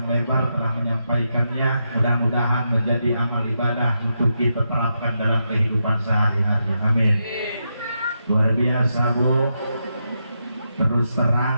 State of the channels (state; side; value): inverted; both; correlation -0.84